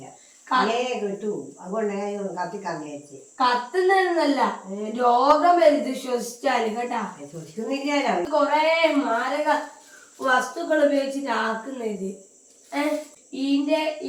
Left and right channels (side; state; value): both; identical; correlation 1.00